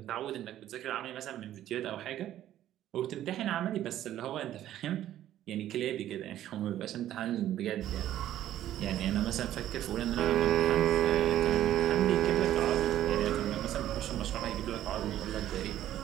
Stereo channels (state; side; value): quieter; left; 12.4 dB